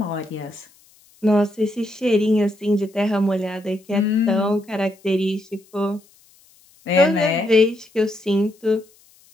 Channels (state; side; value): noise; left; hiss, 30 dB below the sound